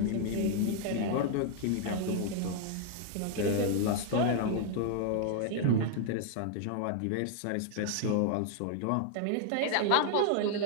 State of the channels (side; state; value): both; different; correlation 0.00